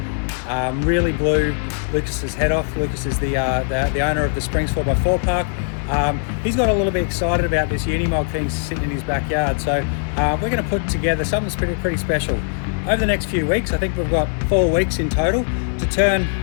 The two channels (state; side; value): silent; right; 65 dB below the other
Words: Really blew Lucas's head off. Lucas is the owner of the Springs 4x4 park. He's got a little bit excited about this Unimog thing sitting in his backyard, so we're going to put together something that's pretty special. Over the next few weeks, I think we've got 4 weeks in total to turn